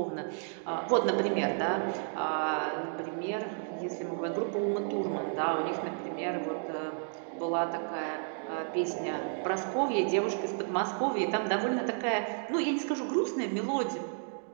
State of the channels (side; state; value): left; silent; 56 dB below the other